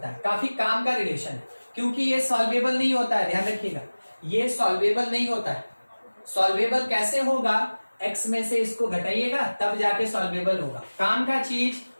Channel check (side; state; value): both; inverted; correlation -1.00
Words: है। काफी काम का रिलेशन है, क्योंकि ये सॉल्वेबल नहीं होता है, ध्यान रखिएगा ये सॉल्वेबल नहीं होता है। सॉल्वेबल कैसे होगा, x में से इसको घटाइएगा तब जाके सॉल्वेबल होगा। काम का चीज